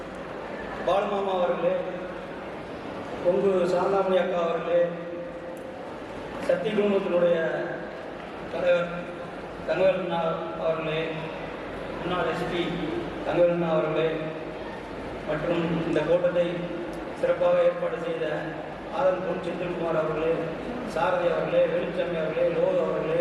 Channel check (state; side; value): identical; both; correlation 1.00